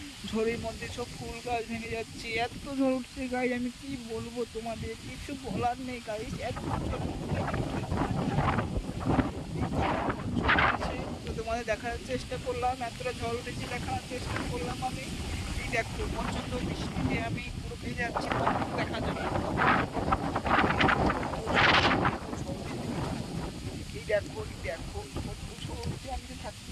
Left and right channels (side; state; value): both; identical; correlation 1.00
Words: ঝড়ের মধ্যে সব ফুল গাছ ভেঙে যাচ্ছে, এত ঝড় উঠছে গাইস, আমি কি বলবো তোমাদের, কিছু বলার নেই গাইস, এত ঝড় উঠেছে। তো তোমাদের দেখার চেষ্টা করলাম, এতটা ঝড় উঠেছে দেখার চেষ্টা করলাম আমি। এই দেখো প্রচন্ড বৃষ্টিতে আমি পুরো ভেজে যাচ্ছি, দেখা যাবে। এই দেখো, এই দেখো কত ঝড় উঠছে, আমি তো